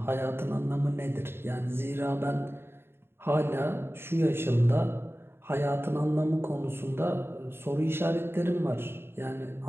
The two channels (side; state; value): left; late; 0.11 ms